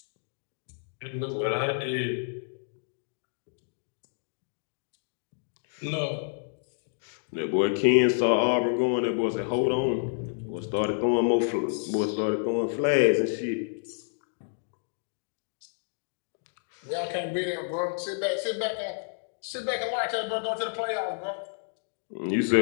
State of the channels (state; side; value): silent; right; digital silence